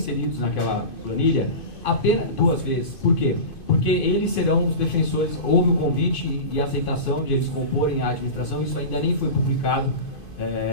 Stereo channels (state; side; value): late; right; 2.5 ms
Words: naquela planilha apenas 2 vezes. Por quê? Porque eles serão os defensores, houve o convite e a aceitação de eles comporem a administração, isso ainda nem foi publicado,